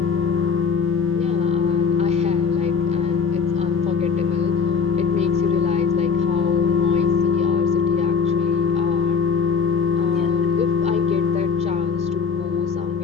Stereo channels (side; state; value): right; quieter; 6.0 dB